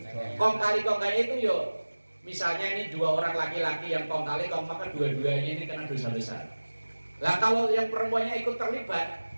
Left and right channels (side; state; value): both; inverted; correlation -1.00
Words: Kong kali kong kayak itu yo. Misalnya ini 2 orang laki-laki yang kong kali kong, maka dua-duanya ini kena dosa besar. Lah kalau yang perempuannya ikut terlibat,